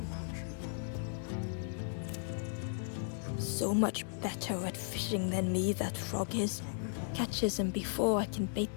So much better at fishing than me, that frog is. Catches them before I can bait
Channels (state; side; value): silent; right; digital silence